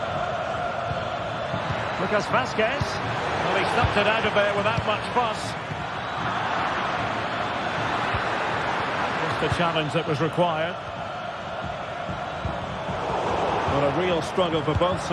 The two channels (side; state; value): both; identical; correlation 1.00